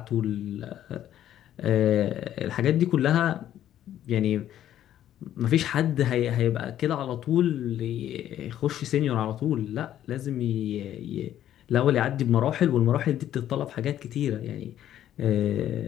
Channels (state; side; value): quieter; right; 11.6 dB